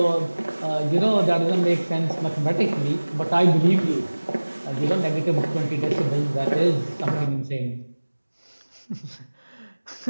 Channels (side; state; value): both; inverted; correlation -1.00